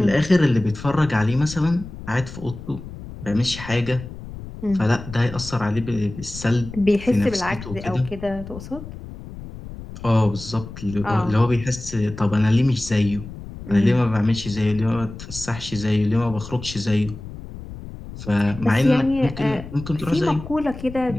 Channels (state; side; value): noise; left; rumble, 13 dB below the sound